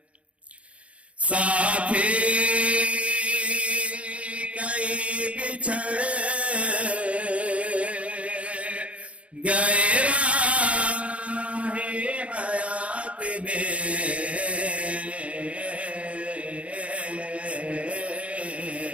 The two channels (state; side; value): late; left; 0.063 ms